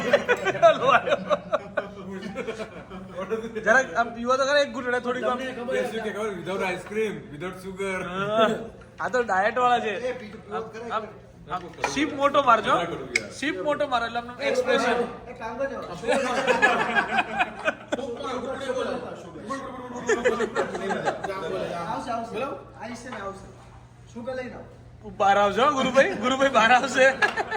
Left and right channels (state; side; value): identical; both; correlation 1.00